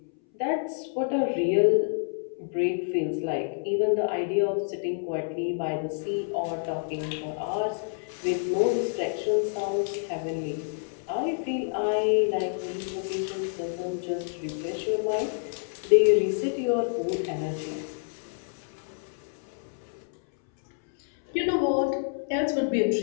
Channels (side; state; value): right; silent; 59 dB below the other